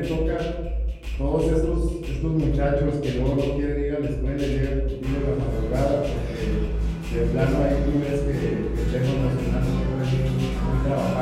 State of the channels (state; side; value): identical; both; correlation 1.00